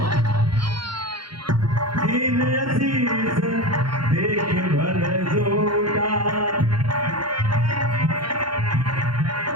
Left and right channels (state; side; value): late; left; 0.73 ms